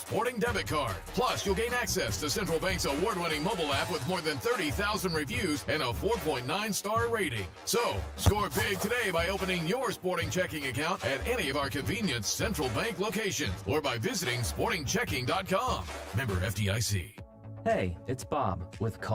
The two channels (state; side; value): identical; both; correlation 1.00